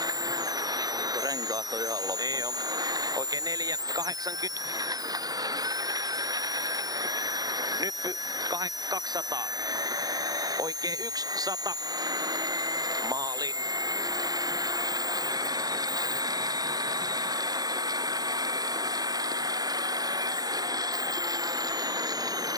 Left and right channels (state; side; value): late; left; 0.18 ms